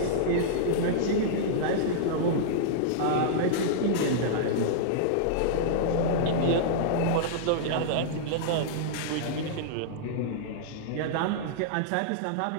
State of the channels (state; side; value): different; both; correlation -0.02